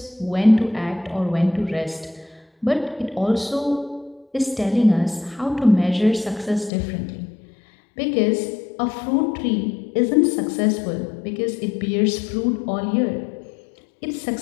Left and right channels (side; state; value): right; drops out; at 6.7 s